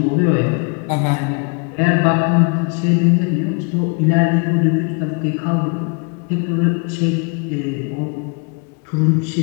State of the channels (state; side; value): quieter; right; 34.9 dB